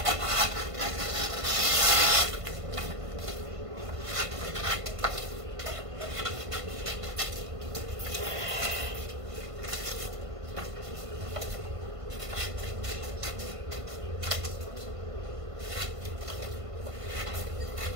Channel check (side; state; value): left; late; 1.5 ms